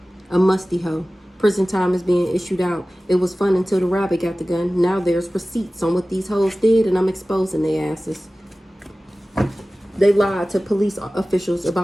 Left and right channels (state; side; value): normal; both; correlation 0.97